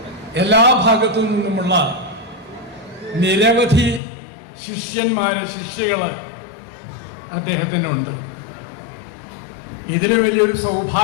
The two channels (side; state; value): right; drops out; at 4.0 s